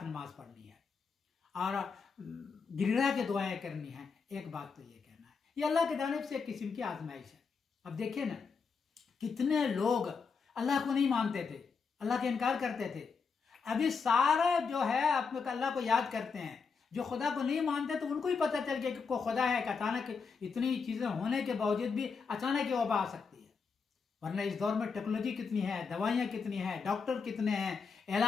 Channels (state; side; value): quieter; right; 5.3 dB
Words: नमाज पढ़नी है और गिड़गिड़ा के दुआएं करनी है। एक बात तो ये कहना है, ये अल्लाह की जानिब से एक किस्म की आजमाइश है। अब देखिए ना, कितने लोग अल्लाह को नहीं मानते थे, अल्लाह के इनकार करते थे। अभी सारे जो है अपने अल्लाह को याद करते हैं। जो खुदा को नहीं मानते तो उनको ही पता चल गया कि कोई खुदा है, कि अचानक इतनी चीजें होने के बावजूद भी अचानक ये वबा आ सकती है। वरना इस दौर में टेक्नोलॉजी कितनी है, दवाइयां कितनी है, डॉक्टर कितने हैं,